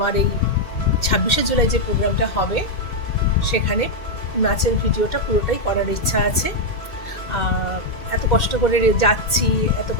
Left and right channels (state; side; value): late; right; 2.1 ms